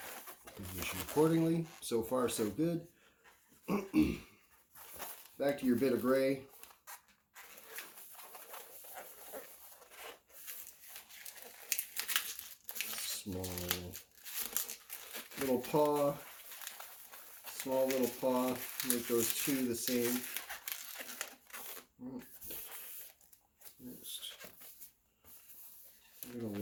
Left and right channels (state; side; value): identical; both; correlation 1.00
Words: Position accordingly. So far, so good. Back to your bit of gray. Small little paw. Small little paw. Make those two the same. Next, you're going to